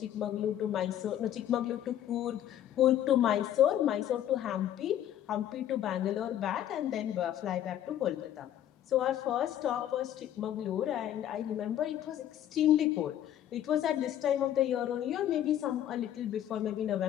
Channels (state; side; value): quieter; right; 11.3 dB